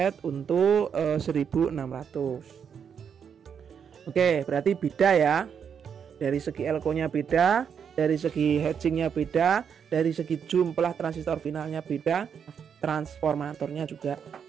untuk 1600. Oke, berarti beda ya. Dari segi elko-nya beda, dari segi hatchingnya beda, dari segi jumlah transistor finalnya beda, transformatornya juga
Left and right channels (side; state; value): left; quieter; 7.4 dB